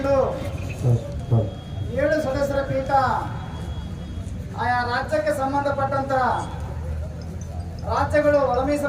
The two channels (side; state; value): both; identical; correlation 1.00